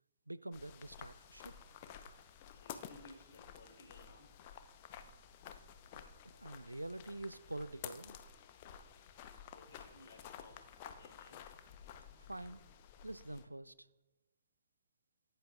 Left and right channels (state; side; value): inverted; both; correlation -0.74